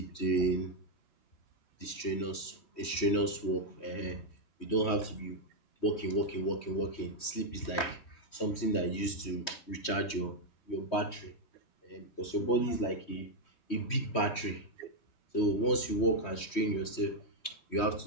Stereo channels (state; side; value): late; right; 3.1 ms